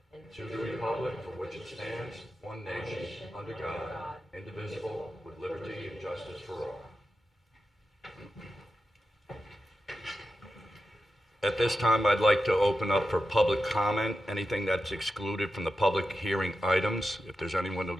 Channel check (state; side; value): normal; both; correlation 0.90